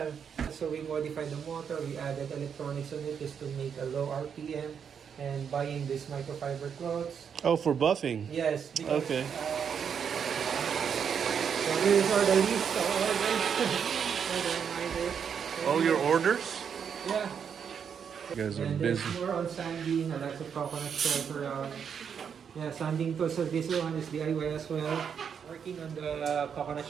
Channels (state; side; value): quieter; left; 7.3 dB